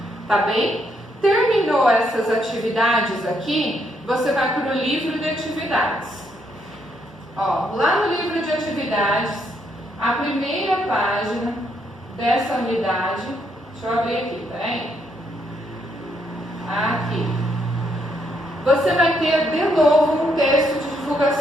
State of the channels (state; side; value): normal; both; correlation 0.75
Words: tá bem? Terminou essas atividades aqui, você vai para o livro de atividades. Ó, lá no livro de atividades, a primeira página dessa unidade, deixa eu abrir aqui, peraí. Aqui. Você vai ter de novo um texto de